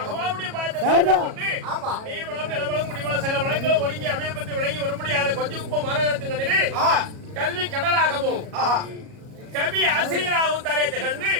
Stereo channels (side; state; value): left; late; 37 ms